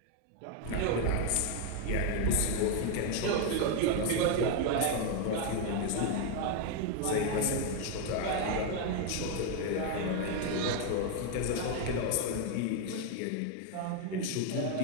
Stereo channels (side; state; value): both; different; correlation 0.01